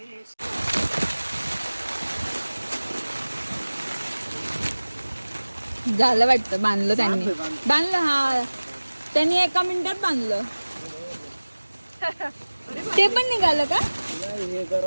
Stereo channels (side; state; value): both; inverted; correlation -1.00